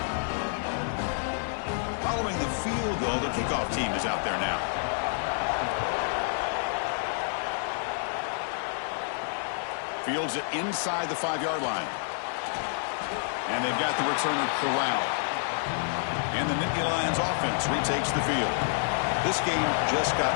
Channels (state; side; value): silent; right; digital silence